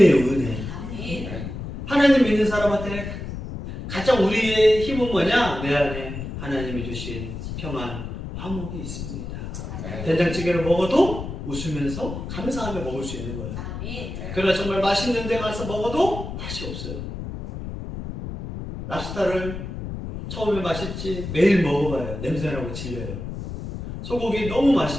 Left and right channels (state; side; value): noise; left; rumble, 7 dB below the sound